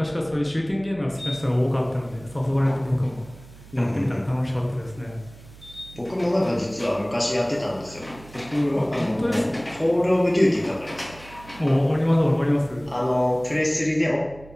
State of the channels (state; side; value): noise; right; hum, 20 dB below the sound